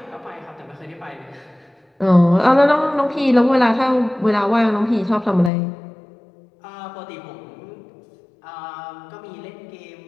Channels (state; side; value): drops out; right; at 5.5 s